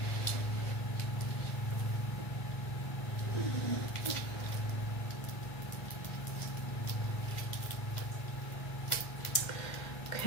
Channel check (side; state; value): right; late; 1.9 ms